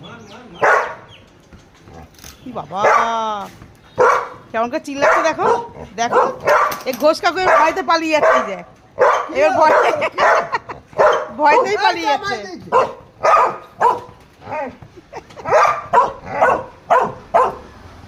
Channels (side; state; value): both; identical; correlation 1.00